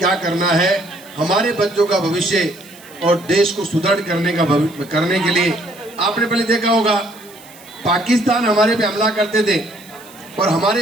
करना है, हमारे बच्चों का भविष्य और देश को सुदृढ़ करने के लिए आपने पहले देखा होगा पाकिस्तान हमारे पे हमला करते थे और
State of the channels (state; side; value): noise; right; hiss, 22 dB below the sound